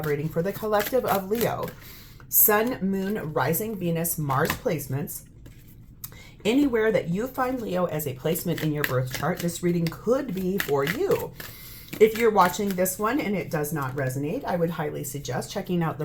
reading for the collective of Leo. Sun, Moon, Rising, Venus, Mars placements. Anywhere that you find Leo as a placement in your birth chart, this reading could be for you. If you're watching this one and it does not resonate, I would highly suggest checking out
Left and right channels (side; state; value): both; identical; correlation 1.00